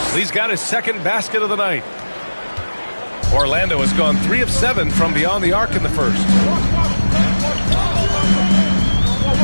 Lee's got his second basket of the night. Orlando has gone 3 of 7 from beyond the arc in the first.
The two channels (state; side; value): inverted; both; correlation -1.00